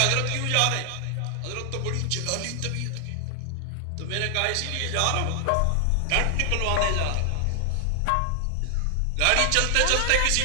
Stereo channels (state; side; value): different; both; correlation 0.00